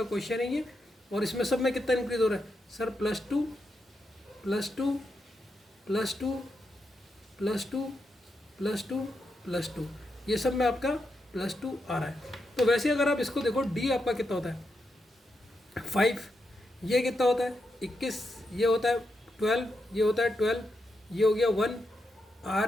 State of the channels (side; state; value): both; normal; correlation 0.84